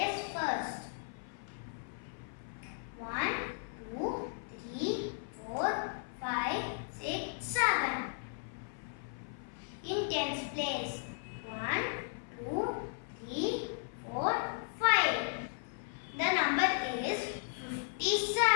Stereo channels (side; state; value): right; silent; 54 dB below the other